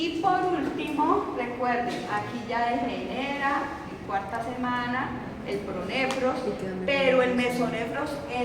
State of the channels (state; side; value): identical; both; correlation 1.00